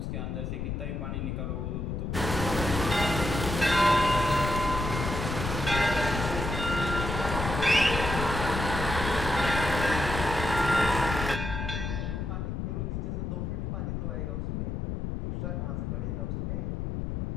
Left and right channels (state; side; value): noise; left; rumble, 3 dB below the sound